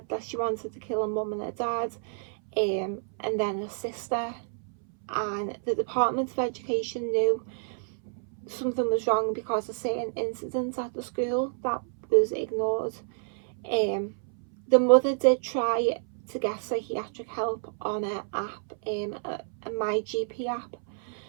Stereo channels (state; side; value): silent; left; 59 dB below the other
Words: that she wanted to kill her mum and her dad, and then her sister, and the Department of Education knew something was wrong because of certain incidents at the school that was ignored. The mother did try to get psychiatric help on her app, a My GP app,